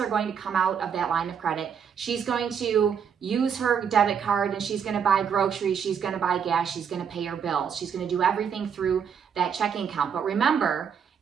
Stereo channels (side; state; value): left; quieter; 7.3 dB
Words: going to come out of that line of credit. She's going to use her debit card and she's going to buy groceries. She's going to buy gas. She's going to pay her bills. She's going to do everything through that checking account. But remember,